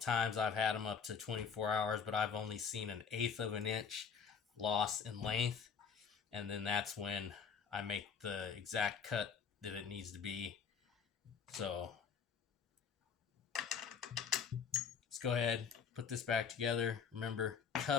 I've had them up to 24 hours, but I've only seen 1/8 of an inch loss in length. And then that's when I make the exact cut that it needs to be. So let's go ahead, put this back together. Remember,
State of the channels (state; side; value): quieter; right; 6.5 dB